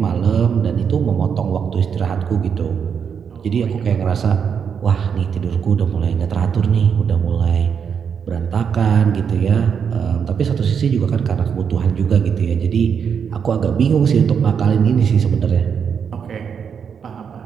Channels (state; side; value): quieter; left; 7.0 dB